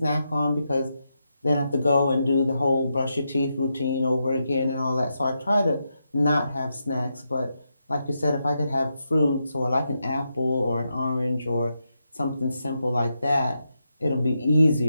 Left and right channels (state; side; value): inverted; both; correlation -0.85